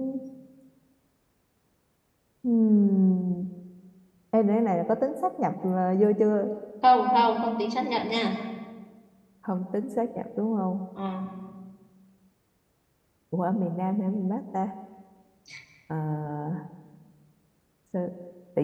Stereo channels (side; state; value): both; identical; correlation 1.00